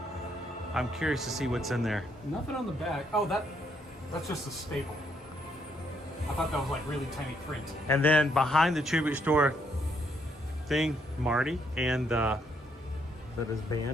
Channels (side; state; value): both; normal; correlation 0.73